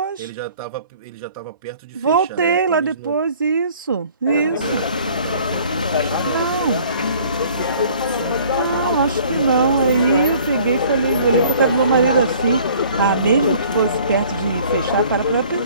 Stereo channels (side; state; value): both; inverted; correlation -0.54